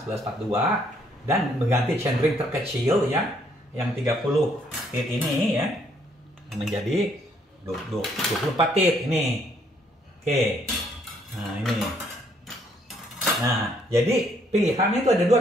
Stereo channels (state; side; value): normal; both; correlation 0.68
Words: 11/42 dan mengganti chainring terkecil ya, yang 30 tit ini ya menjadi 24 tit ini. Oke. Nah, ini. Nah, jadi pilihannya itu ada dua